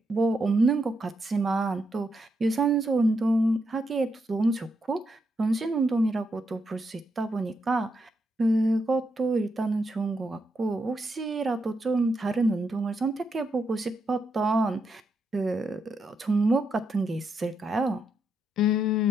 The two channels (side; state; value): both; normal; correlation 0.81